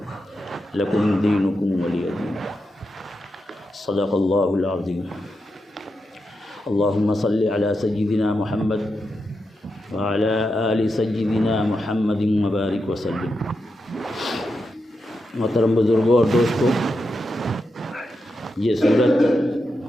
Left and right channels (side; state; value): both; normal; correlation 0.87